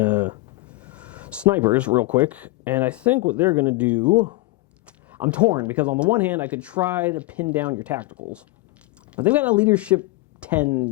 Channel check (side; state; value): right; quieter; 21.0 dB